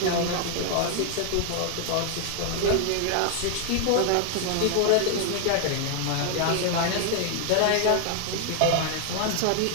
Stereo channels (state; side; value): different; both; correlation 0.00